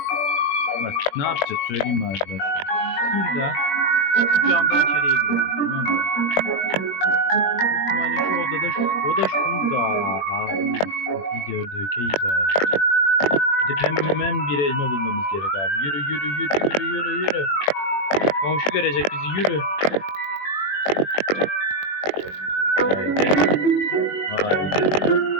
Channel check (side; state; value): right; late; 21 ms